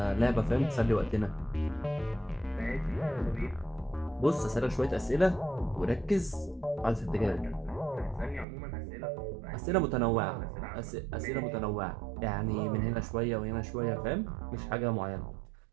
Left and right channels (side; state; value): left; drops out; at 8.5 s